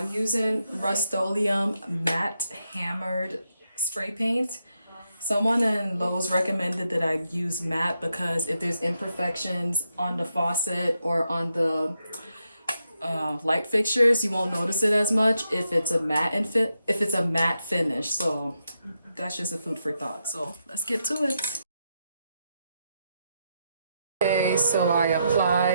using Rust-Oleum matte hammered spray paint. Someone in Lowe's recommended that I use matte because if there's imperfections on the faucet or on the light fixtures, you won't notice it as much if it's a matte finish. So that's just a food for thought. So let's get to it. Okay, so I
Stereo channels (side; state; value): both; inverted; correlation -0.83